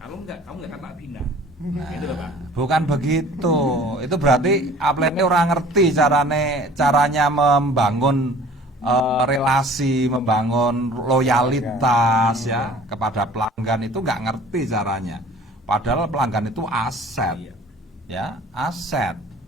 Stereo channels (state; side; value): normal; both; correlation 0.48